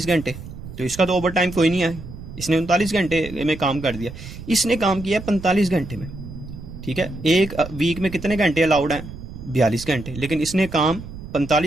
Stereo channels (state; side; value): noise; right; rumble, 12 dB below the sound